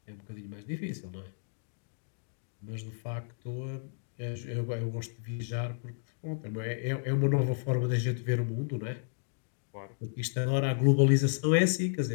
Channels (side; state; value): right; silent; digital silence